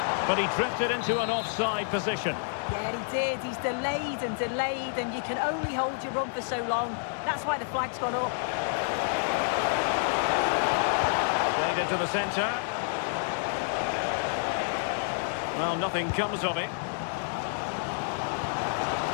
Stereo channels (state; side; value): silent; right; digital silence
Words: But he drifted into an offside position. Yeah, he did. He's delayed, and you can only hold your run for so long. That's why the flag's gone up. Played into the centre. Well, nothing comes of it.